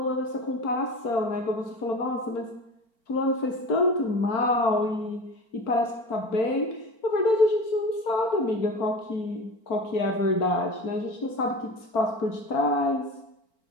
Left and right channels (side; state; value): right; late; 4.4 ms